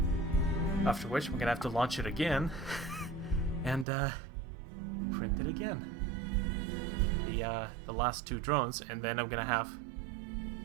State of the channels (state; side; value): drops out; left; at 3.9 s